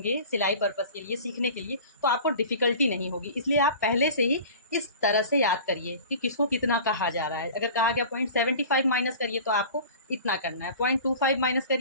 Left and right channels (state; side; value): inverted; both; correlation -0.40